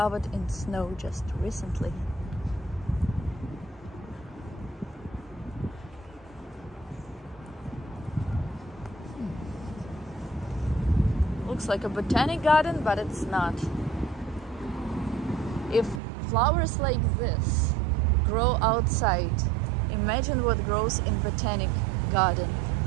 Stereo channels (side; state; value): left; drops out; at 16.0 s